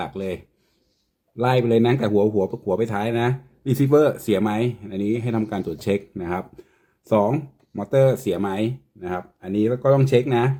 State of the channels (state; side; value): identical; both; correlation 1.00